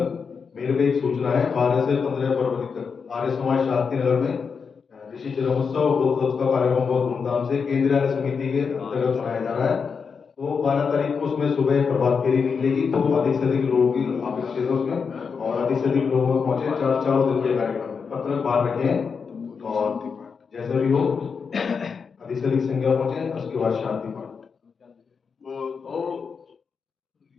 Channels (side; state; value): right; quieter; 5.7 dB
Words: मेरे को एक सूचना है, 12 से 15 फरवरी तक आर्य समाज शांति नगर में ऋषि जन्मोत्सव बोधोत्सव का कार्यक्रम बहुत धूमधाम से केंद्रीय आर्य समिति के अंतर्गत मनाया जा रहा है। तो 12 तारीख को उसमें सुबह प्रभात फेरी निकलेगी, तो अधिक से अधिक लोगों की अपेक्षित है उसमें, और अधिक से अधिक लोगों में पहुंचे। चारों दिन के कार्यक्रम में पत्रक बाहर रखें और जैसे भी हो अधिक से अधिक संख्या पहुंचे। उसके बाद शांति पाठ वो